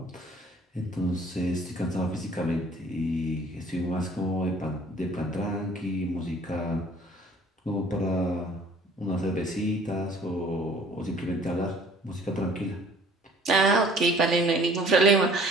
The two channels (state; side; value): normal; both; correlation 0.54